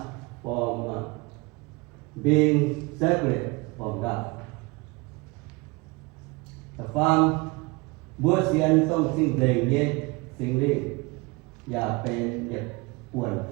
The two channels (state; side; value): quieter; left; 26.0 dB